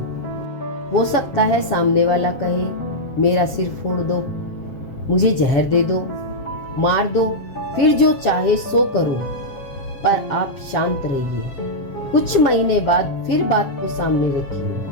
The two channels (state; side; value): late; right; 7.5 ms